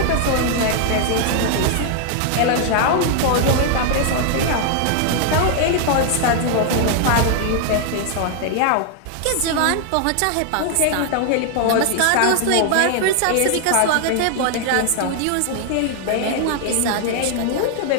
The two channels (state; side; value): different; both; correlation 0.00